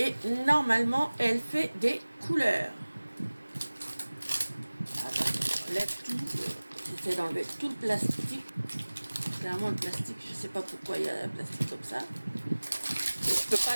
normalement, elle fait des couleurs. J'enlève tout. J'essaie d'enlever tout le plastique. Clairement, le plastique, je ne sais pas pourquoi il y a un plastique comme ça. Je ne peux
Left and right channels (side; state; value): both; inverted; correlation -1.00